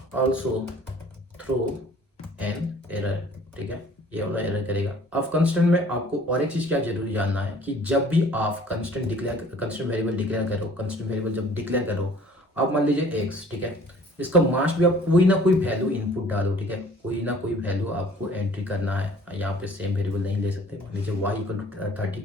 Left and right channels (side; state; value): both; normal; correlation 0.53